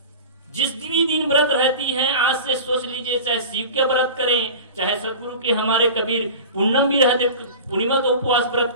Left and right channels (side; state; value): both; inverted; correlation -0.35